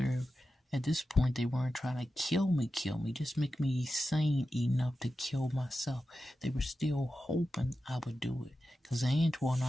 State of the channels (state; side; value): normal; both; correlation 0.92